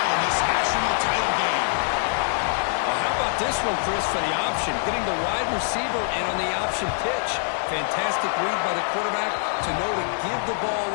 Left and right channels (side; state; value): right; silent; 59 dB below the other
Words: in this national title game. Well, how about this one, Chris, for the option? Getting the wide receiver in on the option pitch. Fantastic read by the quarterback to know to give the ball